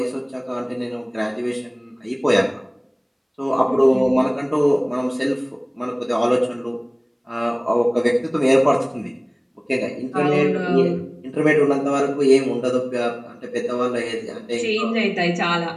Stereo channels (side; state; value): both; identical; correlation 1.00